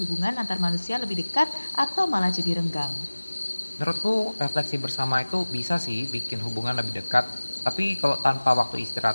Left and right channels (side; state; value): both; inverted; correlation -1.00